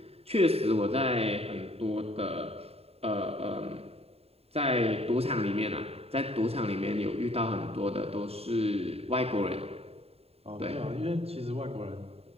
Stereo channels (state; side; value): late; left; 0.29 ms